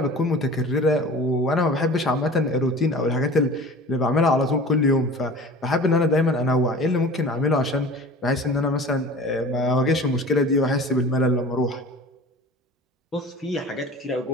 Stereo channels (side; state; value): both; normal; correlation 0.40